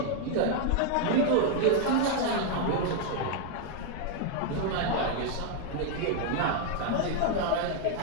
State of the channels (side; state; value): both; different; correlation 0.00